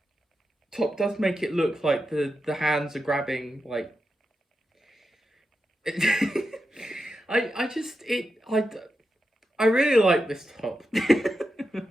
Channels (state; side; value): normal; both; correlation 0.89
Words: top does make it look like the hands are grabbing, like... I really like this top.